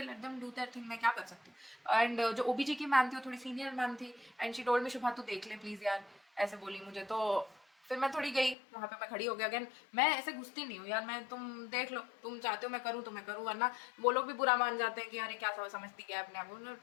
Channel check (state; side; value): drops out; right; at 8.6 s